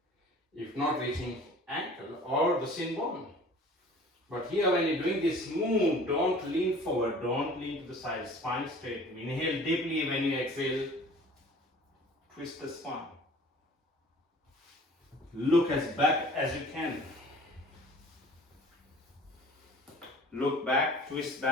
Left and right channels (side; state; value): both; normal; correlation 0.47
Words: if not reaching ankle or the shin bone. But here when you're doing this move, don't lean forward, don't lean to the side, spine straight. Inhale deeply. When you exhale, twist the spine. Look as back as you can. Look back, twist